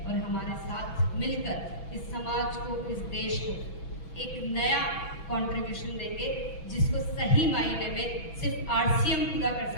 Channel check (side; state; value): right; late; 6.1 ms